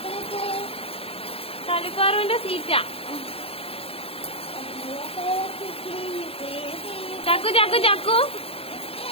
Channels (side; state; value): right; late; 0.28 ms